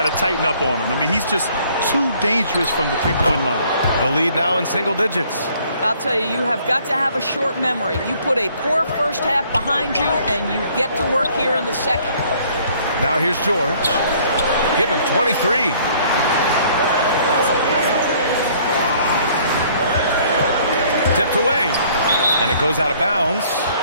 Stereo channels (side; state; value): both; inverted; correlation -0.60